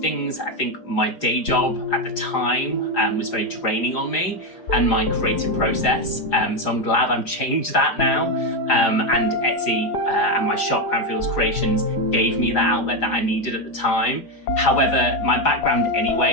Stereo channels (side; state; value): right; late; 4.9 ms